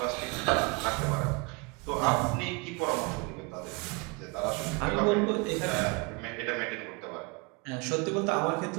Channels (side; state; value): left; quieter; 28.0 dB